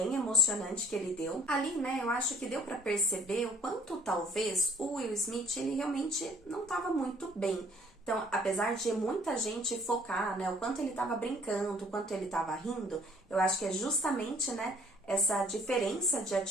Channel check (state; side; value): normal; both; correlation 0.56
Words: emocionante que ele deu. Ali, né, eu acho que deu para perceber o quanto talvez o Will Smith, ele realmente não estava muito bem. Então, apesar de muita gente focar, né, o quanto ele estava brincando, o quanto ele estava rindo, eu acho que é justamente, né, essa diferença de